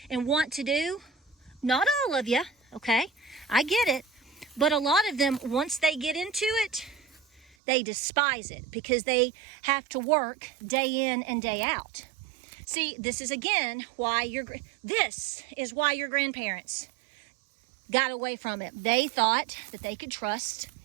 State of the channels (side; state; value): left; drops out; at 7.6 s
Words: and want to do, not all of you, okay? I get it. But a lot of them, once they get into it, they despise it because they have to work day in and day out. See, this is again why your grandparents got away from it. They thought that they could trust